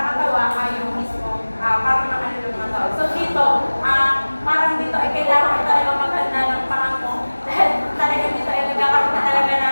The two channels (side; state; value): both; inverted; correlation -1.00